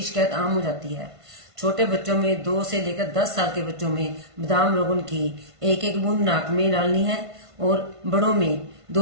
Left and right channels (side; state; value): left; late; 1.5 ms